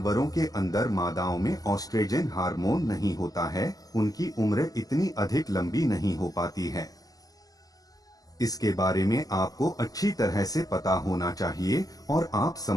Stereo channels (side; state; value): right; late; 0.17 ms